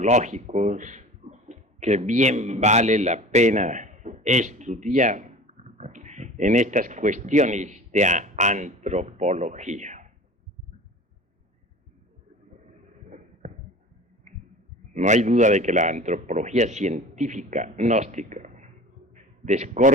que bien vale la pena estudiar en estas cuestiones de antropología. No hay duda de que la antropología científica gnóstica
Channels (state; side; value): normal; both; correlation 0.39